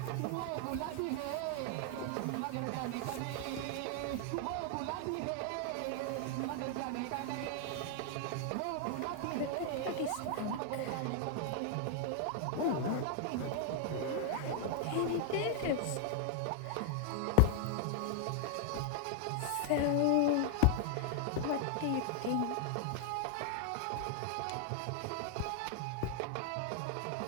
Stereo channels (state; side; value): different; both; correlation 0.00